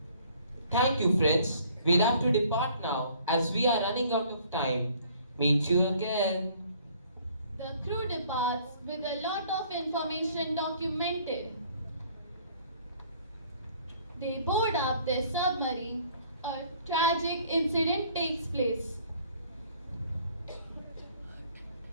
Thank you, friends. We'll have to depart now as we are running out of time. Meet you again. The crew departs with a lot of information documented. They board up their submarine. A tragic incident takes place.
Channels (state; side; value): inverted; both; correlation -0.58